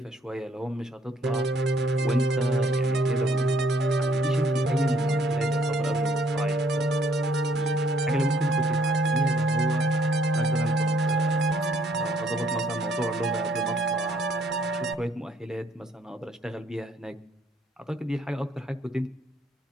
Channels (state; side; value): normal; both; correlation 0.66